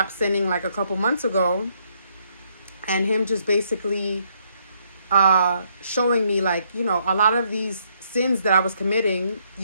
sinning like a couple months ago, and him just basically showing me like, you know, a lot of these sins that I was committing,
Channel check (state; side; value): inverted; both; correlation -0.72